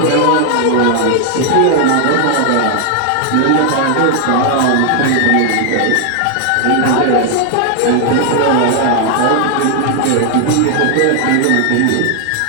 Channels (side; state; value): both; different; correlation 0.00